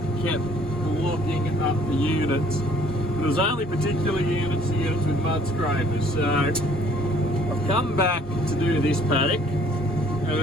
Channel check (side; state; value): both; normal; correlation 0.59